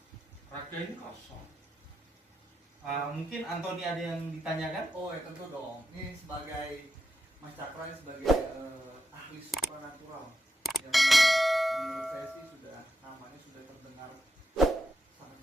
raga ini kosong. Mungkin Anthony ada yang ditanyakan? Oh ya tentu dong. Ini sebagai Mas Cakra sebagai ahli supranatural yang menurut saya sih namanya sudah terdengar sangat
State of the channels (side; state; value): both; normal; correlation 0.86